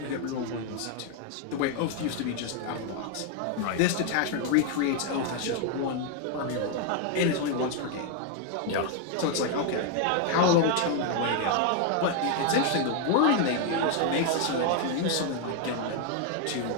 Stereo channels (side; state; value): both; different; correlation 0.00